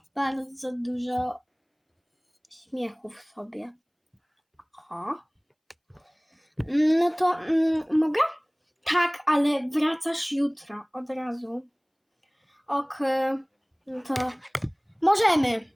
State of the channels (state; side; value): identical; both; correlation 1.00